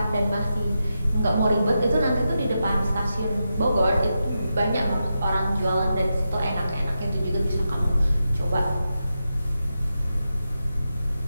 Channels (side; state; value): both; inverted; correlation -0.88